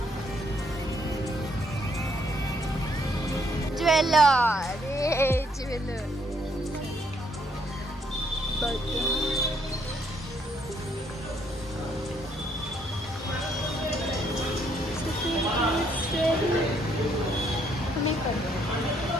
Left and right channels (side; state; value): both; normal; correlation 0.70